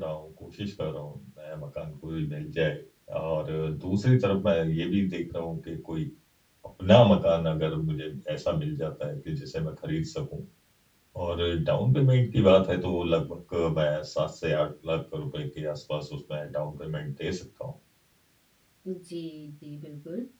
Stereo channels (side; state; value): both; identical; correlation 1.00